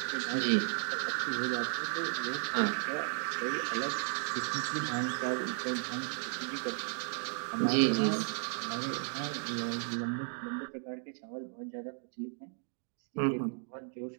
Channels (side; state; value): left; silent; 55 dB below the other